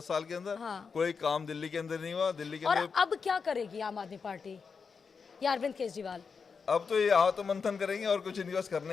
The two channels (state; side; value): quieter; right; 5.5 dB